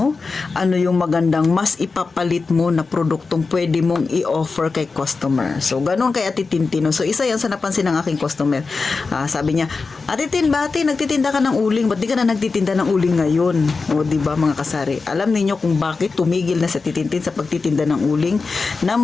Ano yung magandang mas ipapalit mo na produktong pwede mong i-offer kay customer? So, ganun kay Ate Tintino. So, isa yan sa napansin ng aking customer. Sabi niya, Ate Tin, bati, nagtitinda ka ng uling. Ba't di ka na nagtitinda ng uling ngayon? O, diba mga kasari? Alam niyo kung bakit tumigil na sa Titintin sa pagtitinda ng uling?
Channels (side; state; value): right; quieter; 4.3 dB